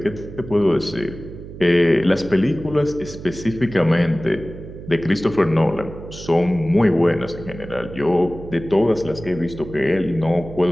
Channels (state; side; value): noise; right; hum, 13 dB below the sound